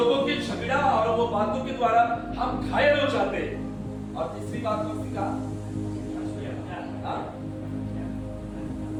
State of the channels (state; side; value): identical; both; correlation 1.00